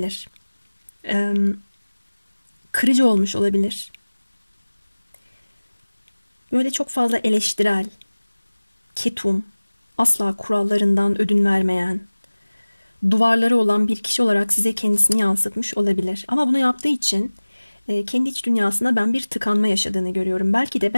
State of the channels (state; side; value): inverted; both; correlation -1.00